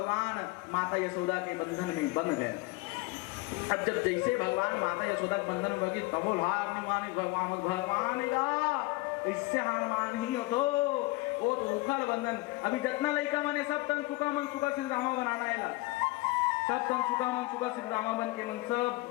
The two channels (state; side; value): quieter; right; 21.9 dB